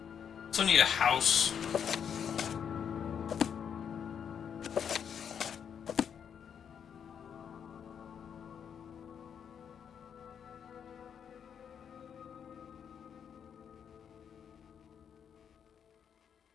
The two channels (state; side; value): quieter; right; 7.9 dB